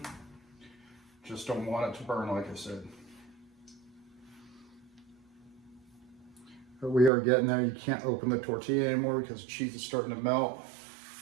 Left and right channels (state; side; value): drops out; left; at 7.1 s